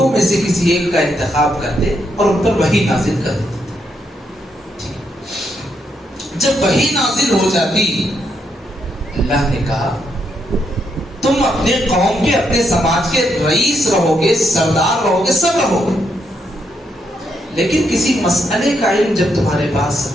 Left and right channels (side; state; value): both; normal; correlation 0.78